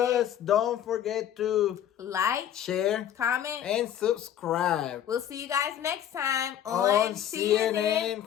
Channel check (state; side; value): quieter; right; 10.4 dB